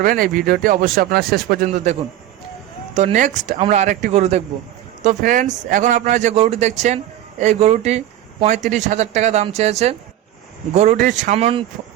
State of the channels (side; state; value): left; quieter; 12.7 dB